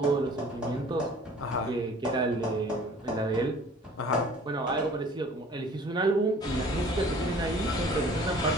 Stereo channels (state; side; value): normal; both; correlation 0.49